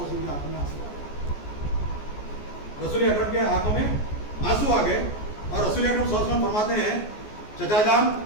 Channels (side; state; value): right; late; 14 ms